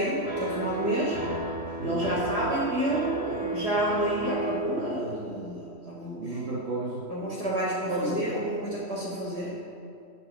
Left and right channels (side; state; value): left; late; 3.1 ms